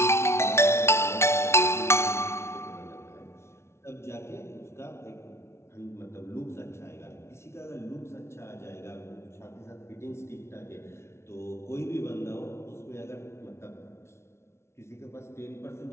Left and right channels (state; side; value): late; right; 0.13 ms